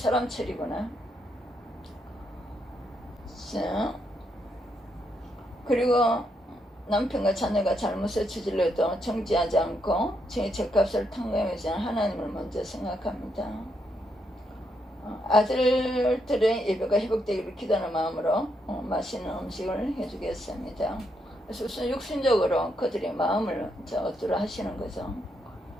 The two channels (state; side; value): normal; both; correlation 0.78